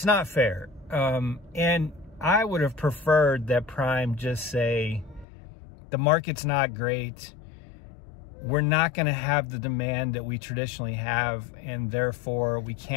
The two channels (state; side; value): drops out; right; at 5.2 s